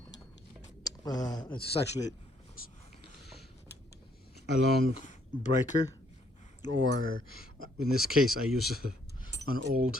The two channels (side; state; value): both; normal; correlation 0.69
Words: it's actually a long breaker, or in this case I use an